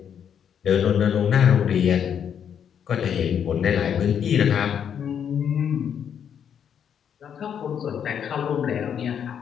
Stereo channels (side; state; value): right; quieter; 8.3 dB